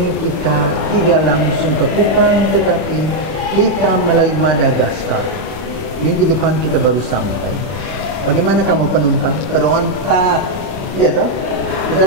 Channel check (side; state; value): left; late; 31 ms